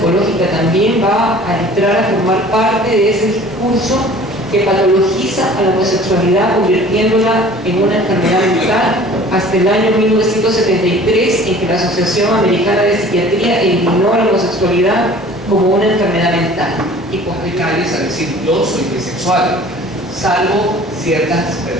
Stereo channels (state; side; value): normal; both; correlation 0.47